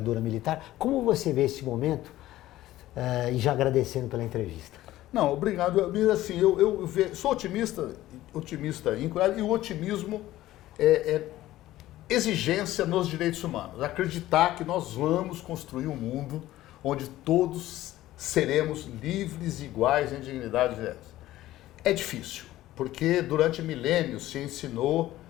militar. Como você vê esse momento? E já agradecendo pela entrevista. Não, obrigado. Assim, eu sou otimista íntegro, e o otimismo é exigência nos direitos humanos. Acreditar que nós vamos construir um mundo onde todos seremos livres e iguais em dignidade. É difícil, porque durante milênios se ensinou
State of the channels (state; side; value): quieter; right; 15.3 dB